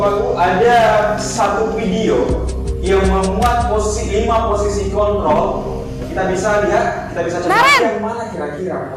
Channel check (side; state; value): both; identical; correlation 1.00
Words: Ibu ada satu video yang memuat 5 posisi kontrol kita bisa lihat, kita bisa coba Naren! yang mana kira-kira